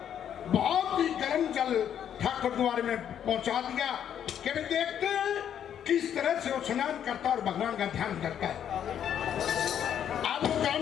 बहुत ही गर्म जल ठाकुर द्वारे में पहुंचा दिया कि वे देखते हैं किस तरह से वो स्नान करता और भगवान का ध्यान करता है। अब वो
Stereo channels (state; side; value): quieter; right; 9.4 dB